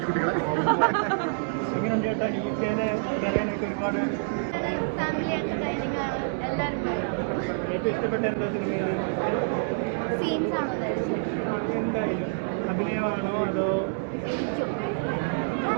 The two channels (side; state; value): left; silent; 60 dB below the other